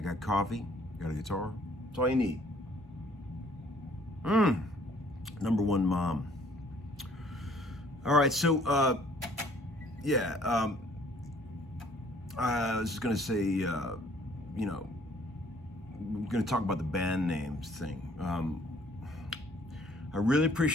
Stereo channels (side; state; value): both; normal; correlation 0.59